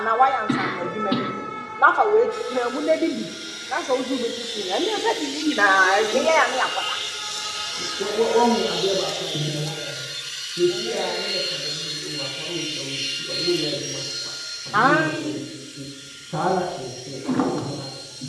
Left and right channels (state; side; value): identical; both; correlation 1.00